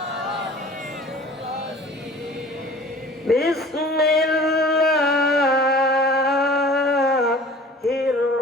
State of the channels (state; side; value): normal; both; correlation 0.46